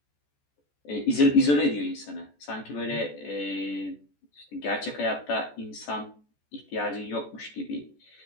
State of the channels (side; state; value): right; late; 14 ms